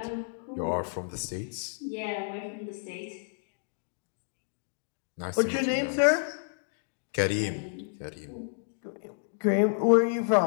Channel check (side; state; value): right; silent; digital silence